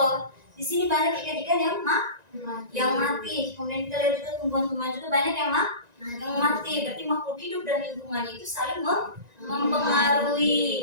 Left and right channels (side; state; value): left; late; 1.9 ms